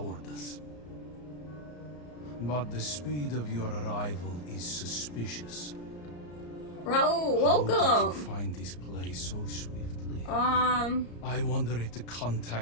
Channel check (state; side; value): late; right; 34 ms